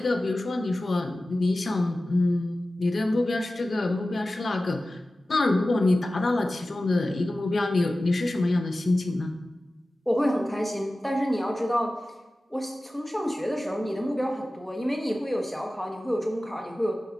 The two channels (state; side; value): normal; both; correlation 0.96